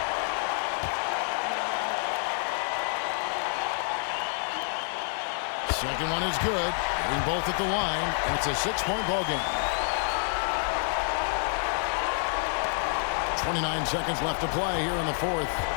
Second one is good. Hitting both at the line, and it's a 6-point ball game. 29 seconds left to play here in the fourth.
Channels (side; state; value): right; silent; 59 dB below the other